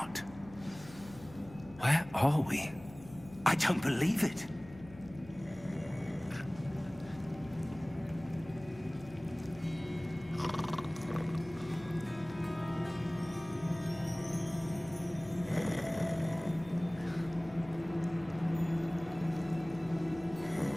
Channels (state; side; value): noise; left; hum, 18 dB below the sound